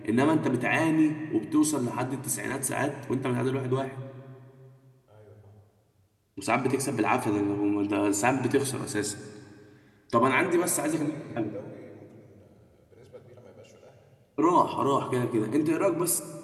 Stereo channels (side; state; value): both; identical; correlation 1.00